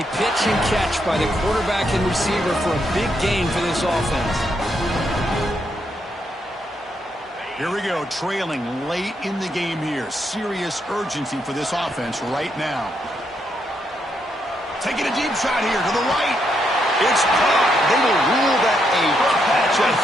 pitch and catch by the quarterback and receiver for a big gain for this offense. Here we go, trailing late in the game here. Serious urgency for this offense right now. Taking a deep shot here to the right. It's caught. They will rule that a catch, a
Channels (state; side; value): normal; both; correlation 0.78